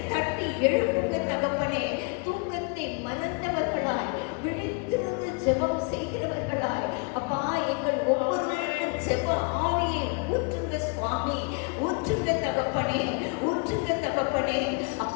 தட்டி எழுப்புங்க தகப்பனே. தூக்கத்தை மறந்தவர்களாய் விழித்திருந்து ஜெபம் செய்கிறவர்களாய் அப்பா எங்கள் ஒவ்வொருவருக்கும் ஜெப ஆவியை ஊற்றுங்க சுவாமி, ஊற்றுங்க தகப்பனே, ஊற்றுங்க தகப்பனே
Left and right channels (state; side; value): quieter; right; 33.0 dB